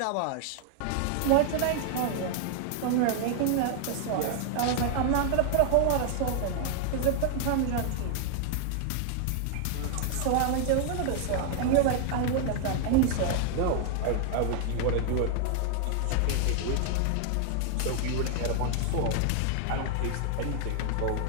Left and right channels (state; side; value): different; both; correlation 0.00